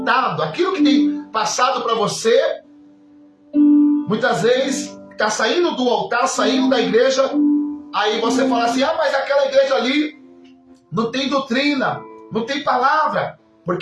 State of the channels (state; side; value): identical; both; correlation 1.00